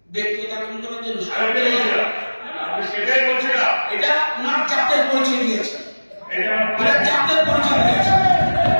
ব্যক্তিগত আক্রমণের জন্য সেটাই বলছিলাম, এটা ওনার জাতের পরিচয় দিয়েছে, এটা জাতের পরিচয় দিয়েছে,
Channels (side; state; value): both; inverted; correlation -1.00